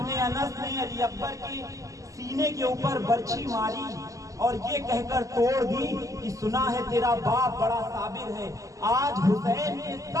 انس نے علی اکبر کے سینے کے اوپر برچھی ماری اور یہ کہہ کر توڑ دی کہ سنا ہے تیرا باپ بڑا صابر ہے، آج حسین کے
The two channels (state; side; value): late; left; 0.16 ms